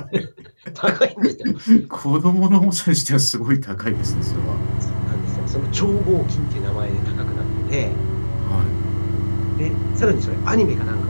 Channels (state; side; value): inverted; both; correlation -1.00